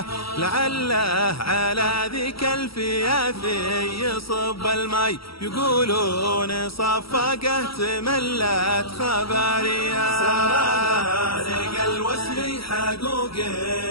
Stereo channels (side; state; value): right; late; 0.75 ms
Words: لعله على ذيك الفيافي يصب المي، يقولون صفقه تملت خباريه. سرى الوسل حقوق